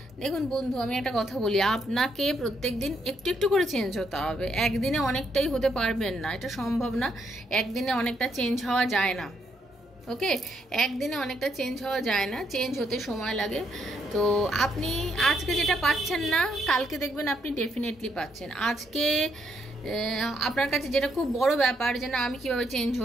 দেখুন বন্ধু, আমি একটা কথা বলি, আপনাকে প্রত্যেক দিন একটু একটু করে চেঞ্জ হতে হবে। একদিনে অনেকটাই হতে পারবেন না, এটা সম্ভব না। একদিনে অনেকটা চেঞ্জ হওয়া যায় না। ওকে, একদিনে অনেকটা চেঞ্জ হওয়া যায় না, চেঞ্জ হতে সময় লাগে। তো আপনি আজকে যেটা পাচ্ছেন না, কালকে দেখবেন আপনি ডেফিনেটলি পাচ্ছেন। আজকে আপনার কাছে যেটা খুব বড় ব্যাপার যে না, আমি কিভাবে চেঞ্জ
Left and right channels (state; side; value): normal; both; correlation 0.76